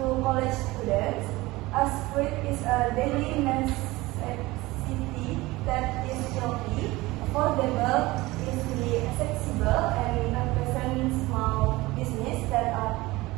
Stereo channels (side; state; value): left; quieter; 20.2 dB